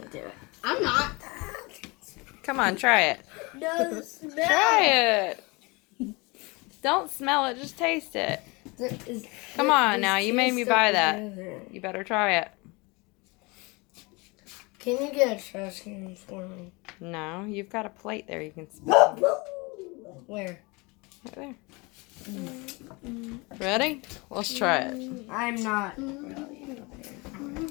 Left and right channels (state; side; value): quieter; right; 26.5 dB